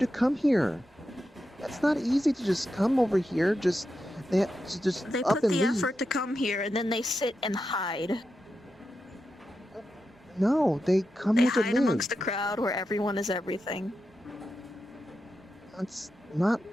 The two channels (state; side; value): normal; both; correlation 0.88